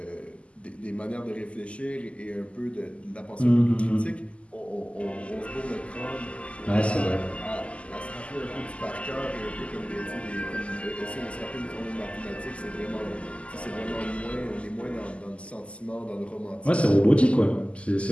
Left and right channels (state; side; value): late; right; 0.058 ms